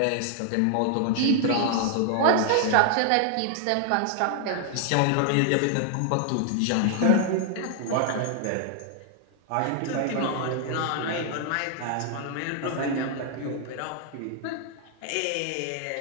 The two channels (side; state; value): both; different; correlation 0.00